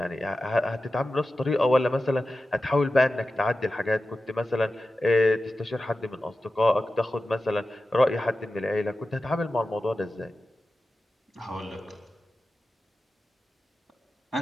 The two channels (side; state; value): both; normal; correlation 0.93